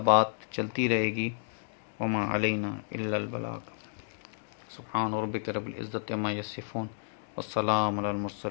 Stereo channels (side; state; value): right; silent; digital silence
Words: بات چلتی رہے گی۔ وما علینا الا البلاغ۔ سبحان ربک رب العزت عما یصفون والسلام علی